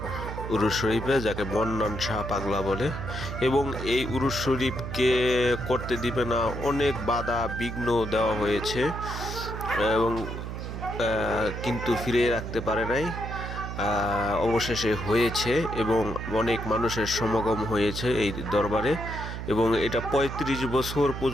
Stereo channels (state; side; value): noise; right; hum, 6 dB below the sound